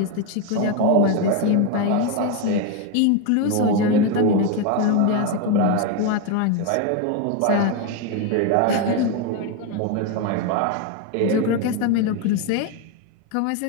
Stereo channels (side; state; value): both; different; correlation 0.02